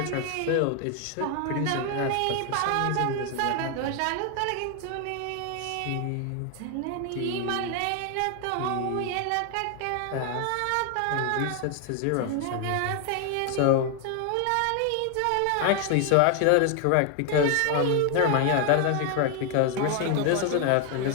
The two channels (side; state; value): both; different; correlation 0.01